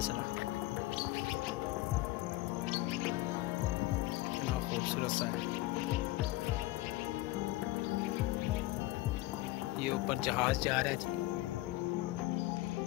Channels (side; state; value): right; quieter; 18.1 dB